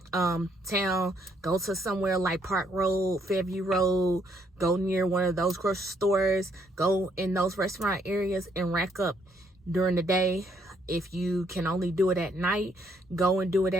town, go to somewhere like Park Road, Fairview Road, go near one of those grocery stores, go in those restaurant areas and rack up during the day. If you can only do it at night, go and do it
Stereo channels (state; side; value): normal; both; correlation 0.70